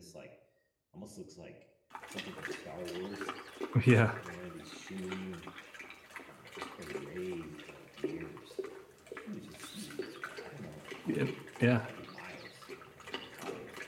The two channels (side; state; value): both; identical; correlation 1.00